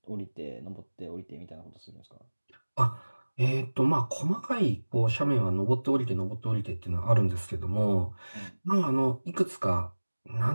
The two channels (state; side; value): inverted; both; correlation -1.00